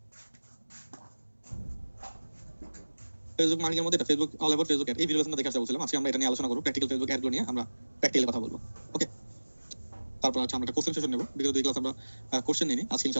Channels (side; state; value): both; inverted; correlation -1.00